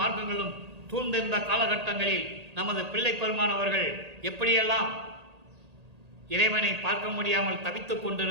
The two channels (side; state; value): left; late; 1.8 ms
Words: மார்க்கங்களும் சூழ்ந்திருந்த காலகட்டங்களில் நமது பிள்ளை பெருமானவர்கள் எப்படியெல்லாம் இறைவனை பார்க்க முடியாமல் தவித்துக்